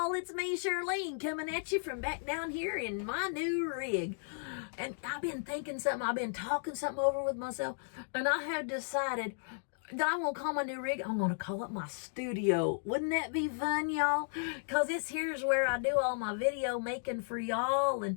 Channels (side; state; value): right; silent; digital silence